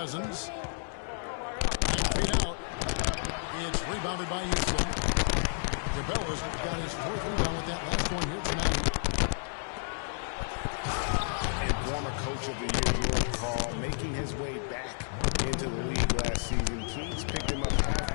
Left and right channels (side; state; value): right; silent; 57 dB below the other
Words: 9 feet out. It's rebounded by Houston. DeBella's got his 4th rebound with that last one here tonight. And former coach of the year, George Karl, making his way back into the league last season. Kings picked him up